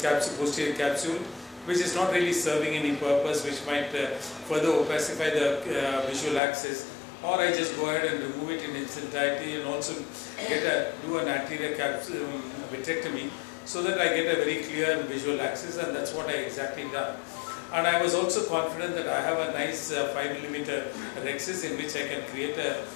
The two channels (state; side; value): drops out; right; at 6.4 s